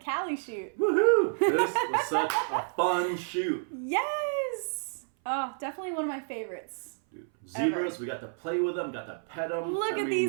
shoot. Woohoo! This was such a fun shoot. Yes! Oh, definitely one of my favorites. Dude, zebras, ever. We got to play with them, got to pet them. Look at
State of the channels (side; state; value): left; silent; 58 dB below the other